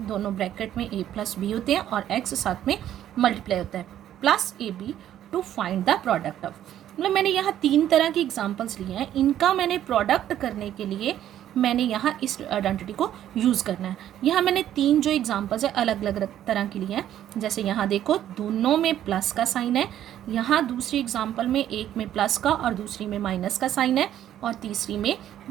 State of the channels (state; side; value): quieter; left; 11.5 dB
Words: ब्रैकेट में a प्लस बी होते हैं और x साथ में मल्टीप्लाई होता है, plus a b to find the product of. मतलब मैंने यहाँ 3 तरह की एग्जांपल्स लिए हैं, इनका मैंने प्रोडक्ट करने के लिए मैंने यहाँ इस आइडेंटिटी को यूज़ करना है। यहाँ मैंने 3 जो एग्जांपल्स है अलग अलग तरह के लिए हैं। जैसे यहाँ देखो, दोनों में प्लस का साइन है, यहाँ दूसरी एग्जांपल में एक में प्लस का और दूसरी में माइनस का साइन है, और तीसरी में